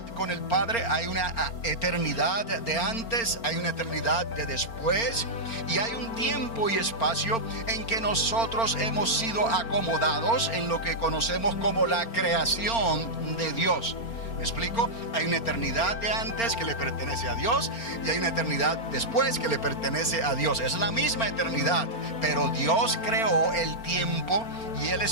con el Padre, hay una eternidad de antes, hay una eternidad de después, y hay un tiempo y espacio en que nosotros hemos sido acomodados en lo que conocemos como la creación de Dios. ¿Me explico? Hay una eternidad de antes que le pertenece a Dios, y hay una eternidad después que le pertenece a Dios. Es la misma eternidad, pero Dios creó el tiempo y el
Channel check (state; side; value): late; right; 4.4 ms